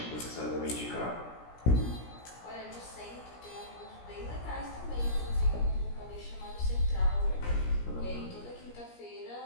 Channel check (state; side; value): late; right; 17 ms